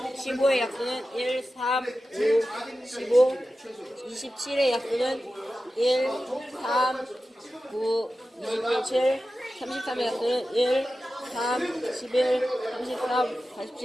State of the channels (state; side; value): normal; both; correlation 0.93